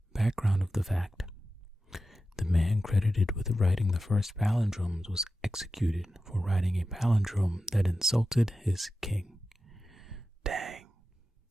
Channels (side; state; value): both; normal; correlation 0.92